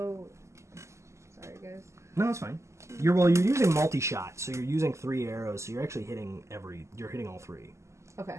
Sorry, guys. No, it's fine. You're using multi-shot, so you're using 3 arrows, so you're actually hitting you're hitting all 3.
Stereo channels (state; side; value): late; left; 0.13 ms